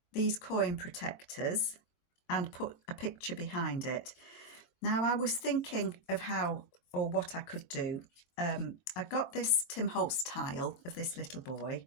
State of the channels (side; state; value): right; late; 22 ms